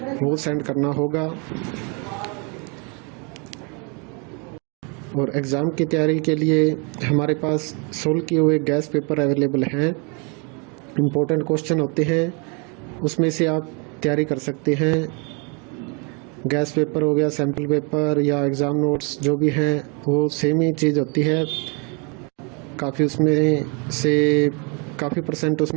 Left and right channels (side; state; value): left; quieter; 33.9 dB